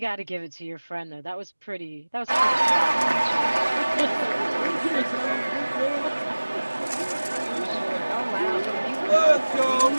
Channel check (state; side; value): inverted; both; correlation -1.00